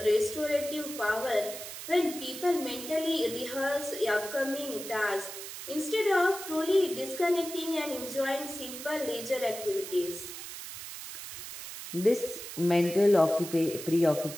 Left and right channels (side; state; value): right; noise; hiss, 10 dB below the sound